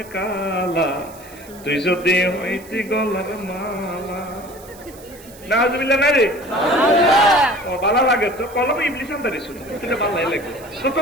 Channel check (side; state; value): right; noise; hiss, 21 dB below the sound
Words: কালা, তুই যদি হইতি গলার মালা। নাউজুবিল্লাহ না রে, ও ভালো লাগে তো কলম ইবলিস আনতারি শুনে, তুই ভালো লাগে তো তো